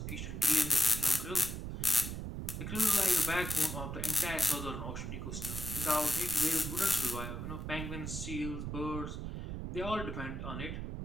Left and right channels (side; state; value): right; noise; rumble, 5 dB below the sound